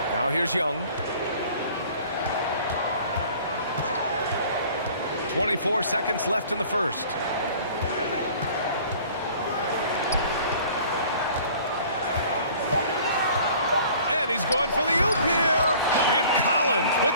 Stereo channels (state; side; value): inverted; both; correlation -0.50